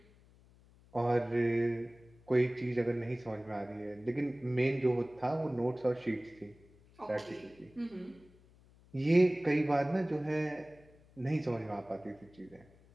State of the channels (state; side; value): noise; left; hum, 27 dB below the sound